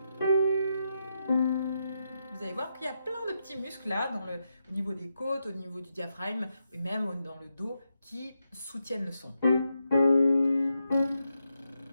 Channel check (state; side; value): inverted; both; correlation -0.85